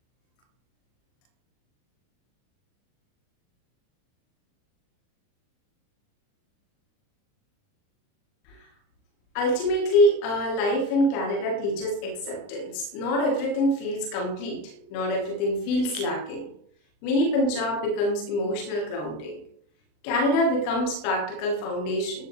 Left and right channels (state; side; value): late; right; 39 ms